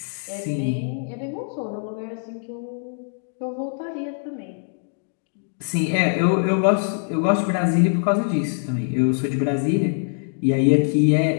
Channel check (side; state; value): right; silent; digital silence